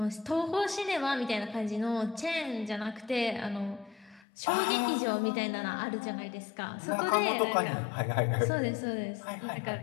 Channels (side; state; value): right; drops out; at 4.2 s